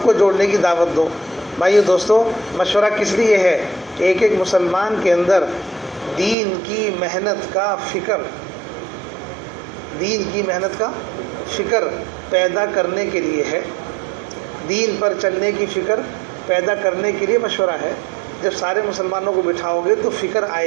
کو جوڑنے کی دعوت دو۔ بھائیو دوستو، مشورہ کس لیے ہے؟ ایک ایک مسلمان کے اندر دین کی محنت کا فکر، دین کی محنت کا فکر پیدا کرنے کے لیے ہے، دین پر چلنے کی فکر پیدا کرنے کے لیے مشورہ ہے۔ جب سارے مسلمانوں کو بٹھاؤ گے تو فکر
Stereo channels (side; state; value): left; drops out; at 6.4 s